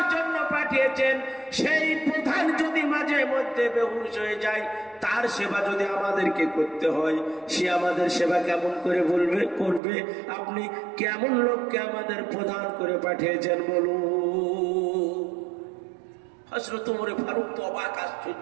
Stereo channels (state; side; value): drops out; left; at 9.8 s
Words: জন্য পাঠিয়েছেন, সেই প্রধান যদি মাঝে মধ্যে বেহুশ হয়ে যায়, তার সেবা যদি আমাদেরকে করতে হয়, সে আমাদের সেবা কেমন করে করবে? আপনি কেমন লোককে আমাদের প্রধান করে পাঠিয়েছেন বলুন। হযরত ওমর ফারুক তো অবাক,